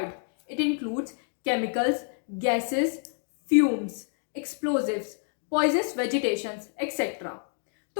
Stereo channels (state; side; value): silent; right; digital silence